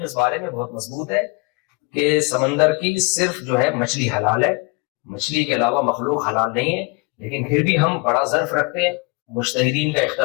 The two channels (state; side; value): quieter; right; 28.9 dB